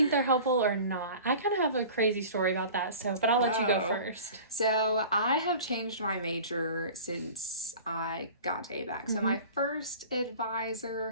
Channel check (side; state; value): both; inverted; correlation -0.41